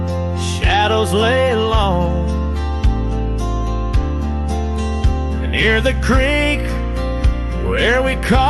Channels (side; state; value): both; identical; correlation 1.00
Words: shadows lay long, and near the creek where we